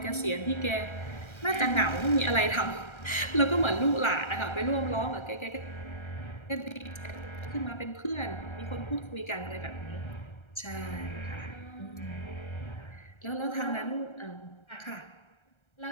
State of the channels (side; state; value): right; late; 1.3 ms